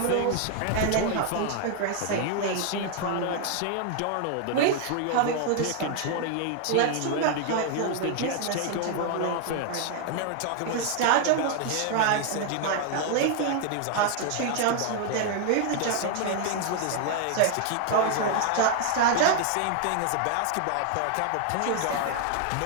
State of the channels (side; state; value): both; different; correlation 0.00